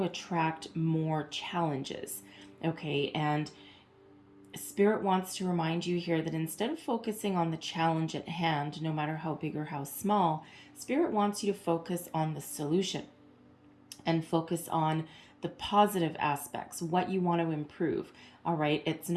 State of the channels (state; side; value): identical; both; correlation 1.00